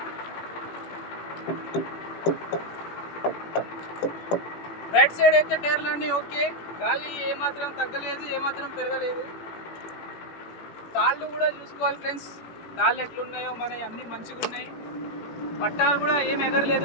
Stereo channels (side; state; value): right; late; 17 ms